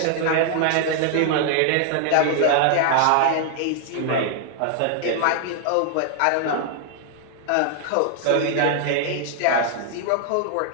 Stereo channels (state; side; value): different; both; correlation 0.00